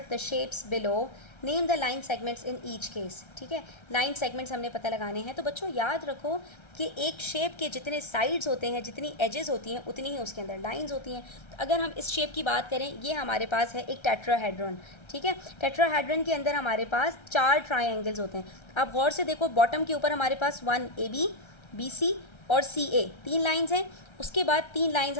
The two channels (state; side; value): late; right; 1.3 ms